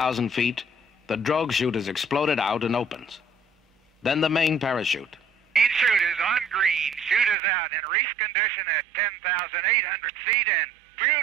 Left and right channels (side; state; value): left; drops out; at 7.4 s